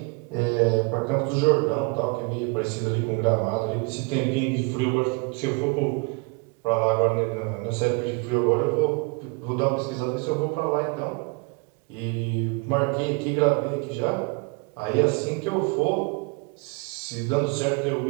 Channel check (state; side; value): quieter; left; 31.4 dB